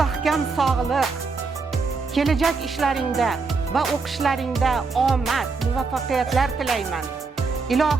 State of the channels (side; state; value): left; quieter; 4.4 dB